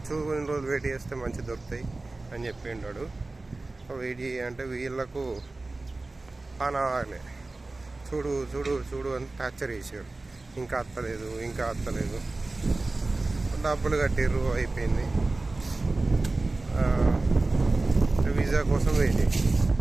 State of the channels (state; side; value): quieter; left; 3.2 dB